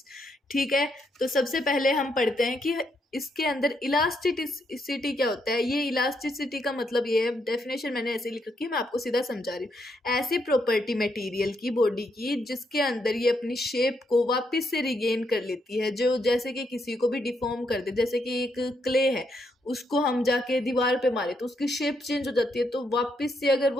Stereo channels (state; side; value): normal; both; correlation 0.77